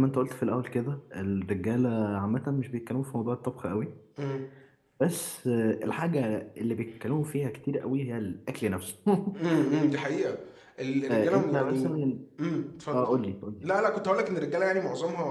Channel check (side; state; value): both; identical; correlation 1.00